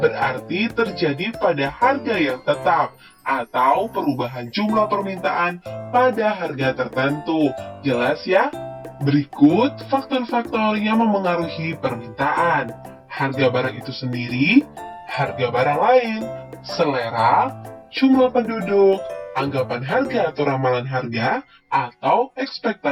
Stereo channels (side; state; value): both; identical; correlation 1.00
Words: terjadi pada harga yang tetap atau perubahan jumlah permintaan pada harga tertentu. Jelas ya? Berikut faktor-faktor yang memengaruhi permintaan. Harga barang itu sendiri, harga barang lain, selera, jumlah penduduk, anggapan harga atau ramalan harga, atau